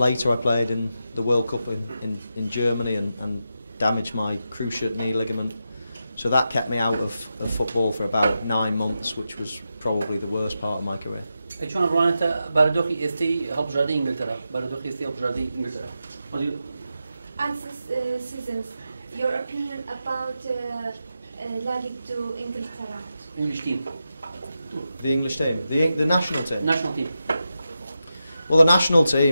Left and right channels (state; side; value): inverted; both; correlation -0.89